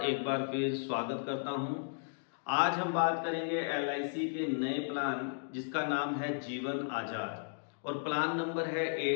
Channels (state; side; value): silent; right; digital silence